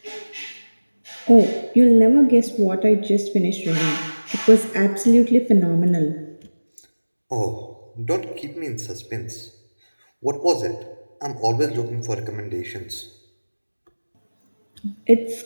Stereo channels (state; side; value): inverted; both; correlation -1.00